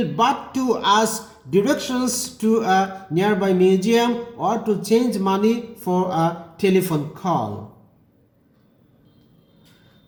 but to ask directions to a nearby museum or to change money for a telephone call.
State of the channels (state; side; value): identical; both; correlation 1.00